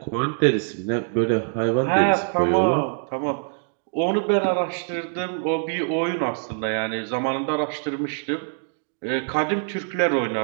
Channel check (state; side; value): silent; left; digital silence